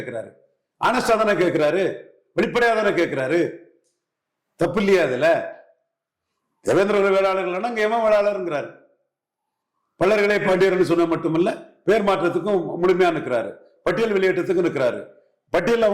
ஆனஸ்டா தானே கேட்கிறாரு, வெளிப்படையா தானே கேட்கிறாரு. தப்பு இல்லையா அதுல? தேவேந்திர வேளாளர்கள் அங்க எவன் வேளாளருங்கிறாரு. பலர்களே பாண்டியர்கள் சொன்ன மட்டுமல்ல, பேர் மாற்றத்துக்கும் முழுமையா நிற்கிறாரு, பட்டியல் வெளியேற்றத்துக்கும் நிற்கிறாரு. பட்டியல்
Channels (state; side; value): identical; both; correlation 1.00